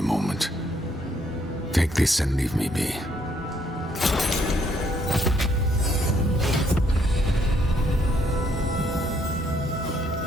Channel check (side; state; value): both; normal; correlation 0.69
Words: moment. Take this and leave me be.